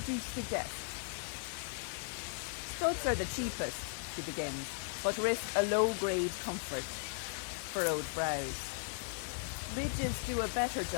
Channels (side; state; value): right; silent; digital silence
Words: you suggest? Studs are the cheapest, she begins, but risk a low-grade comfort. Furrowed brows. Ridges do a better